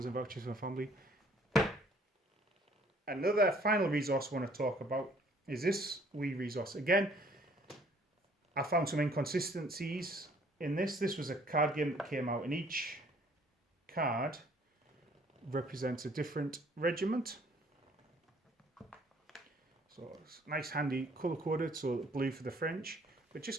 vouchers for my family. Another final resource I want to talk about is this wee resource. Again, I found some inconsistencies in this. This was a card game that came out, and each card represents a different regiment. So it's nice, handy, colour coded. So blue for the French, but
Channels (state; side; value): normal; both; correlation 0.59